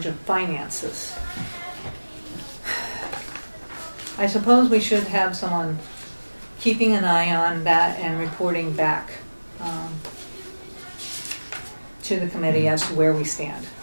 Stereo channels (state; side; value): inverted; both; correlation -1.00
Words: of finances. I suppose we should have someone keeping an eye on that and reporting back to the committee as to where we stand.